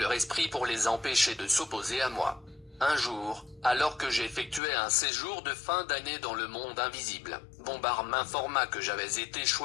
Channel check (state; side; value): drops out; right; at 4.6 s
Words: esprit pour les empêcher de s'opposer à moi. Un jour, alors que j'effectuais un séjour de fin d'année dans le monde invisible, Bombard m'informa que j'avais été